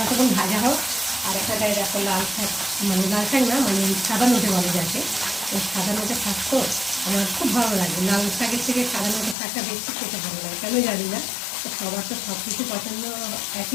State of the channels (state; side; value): drops out; right; at 9.3 s